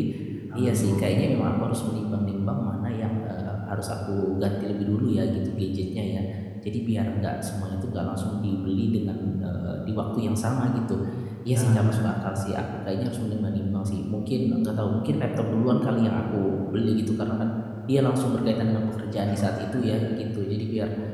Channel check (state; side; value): identical; both; correlation 1.00